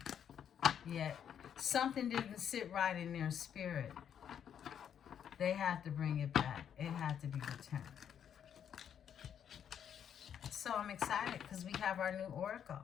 Yeah. Something didn't sit right in their spirit. They had to bring it back. It had to be returned. So I'm excited because we have our new oracle,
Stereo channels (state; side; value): quieter; right; 8.7 dB